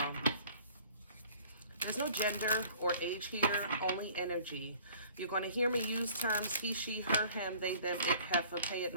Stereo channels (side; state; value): both; inverted; correlation -0.51